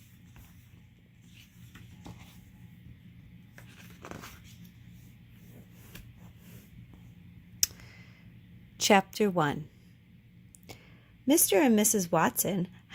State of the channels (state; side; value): identical; both; correlation 1.00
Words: Chapter 1. Mr. and Mrs. Watson